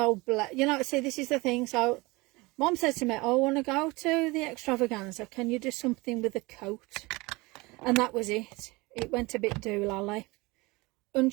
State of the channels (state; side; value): quieter; left; 23.5 dB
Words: you know, see, this is the thing. So Mom said to me, oh, I want to go to the extravaganza. Can you do something with a coat? And that was it. It went a bit doolally.